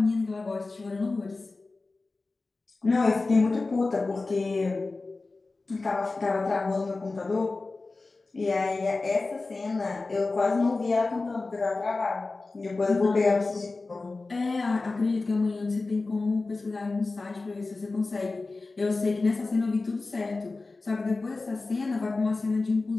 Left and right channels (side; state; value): right; quieter; 3.6 dB